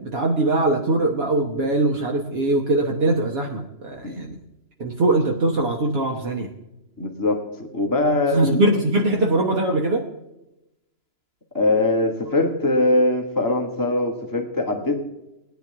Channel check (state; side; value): late; left; 2.9 ms